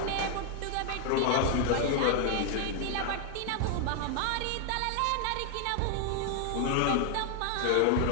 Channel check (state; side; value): different; both; correlation 0.00